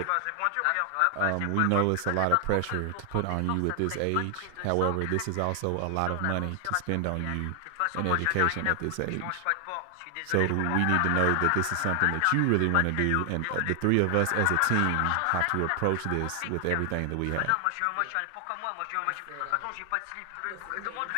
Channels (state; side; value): different; both; correlation 0.00